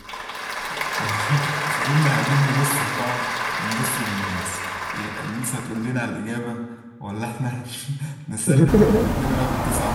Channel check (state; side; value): identical; both; correlation 1.00